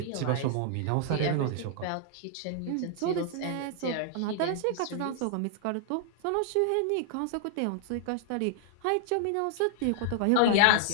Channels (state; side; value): different; both; correlation -0.01